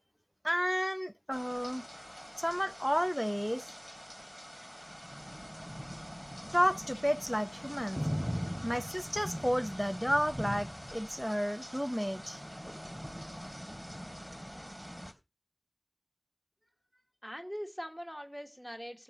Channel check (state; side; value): identical; both; correlation 1.00